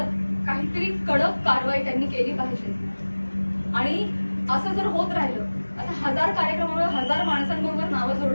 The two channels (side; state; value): both; inverted; correlation -1.00